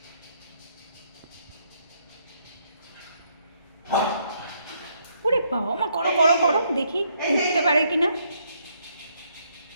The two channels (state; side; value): inverted; both; correlation -0.72